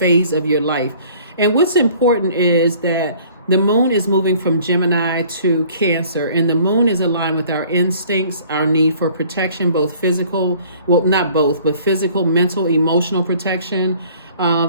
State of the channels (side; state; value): both; inverted; correlation -0.54